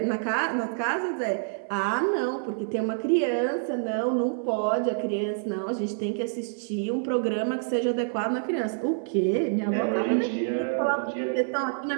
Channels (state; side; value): silent; left; 60 dB below the other